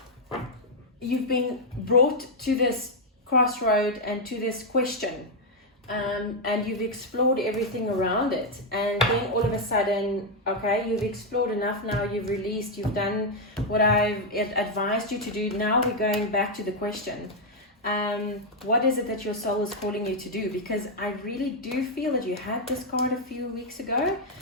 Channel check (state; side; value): normal; both; correlation 0.00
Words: you've been brought to this crossroad and to this question, and you've explored everything around it, and then all of a sudden, okay, you've explored enough now, you've released, you've done what I've advised you to do. Now we're going back to the question. What is it that your soul is calling you to do? Because I really do feel that you had this card a few weeks ago.